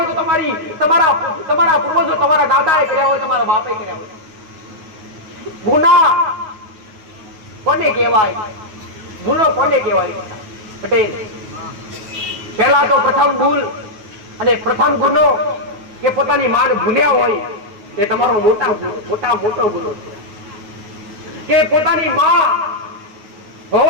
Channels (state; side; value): late; left; 9.4 ms